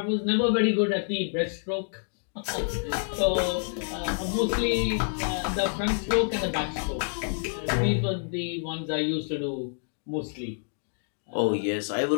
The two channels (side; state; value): right; silent; digital silence